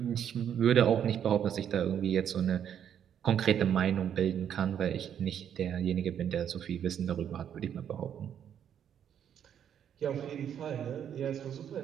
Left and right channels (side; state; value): left; quieter; 9.1 dB